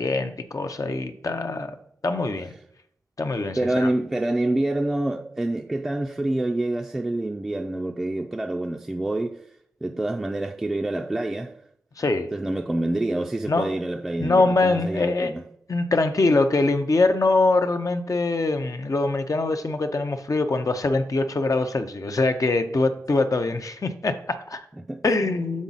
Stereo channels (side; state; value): both; normal; correlation 0.86